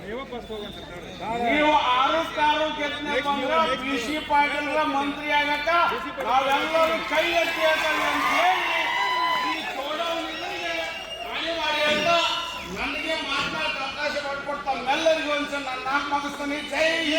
ನೀವು 6 ಗೆದ್ದ ಬಂದ್ರೆ ಕೃಷಿ ಪಾಟೀಲ್ ಮಂತ್ರಿ ಆಗಕ್ಕ ನಾವೆಲ್ಲರೂ ಕೈ ಎತ್ತಿ ಹೇಳ್ತಾರೆ ಅಂತ ಹೇಳಿ ಈ ಚೋಡವನಿಗೆ ಅನಿವಾರ್ಯ. ನನಗೆ ಮಾತನಾಡಕ್ಕೆ ಅವಕಾಶ ಮಾಡಿಕೊಡ್ತಾ ಎಲ್ಲರಿಗೂ ಒಂದ್ಸಲ ನಾನು 4 ಮುಗಿಸ್ತಾನೆ. ಜೈ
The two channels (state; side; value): identical; both; correlation 1.00